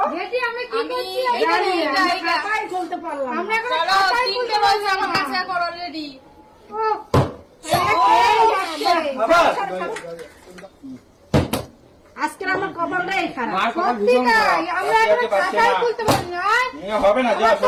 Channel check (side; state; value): both; identical; correlation 1.00